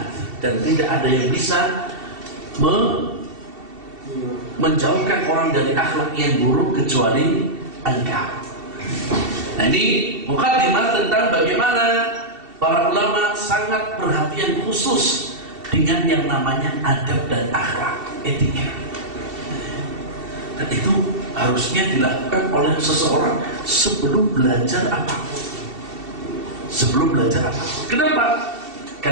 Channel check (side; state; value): left; late; 2.7 ms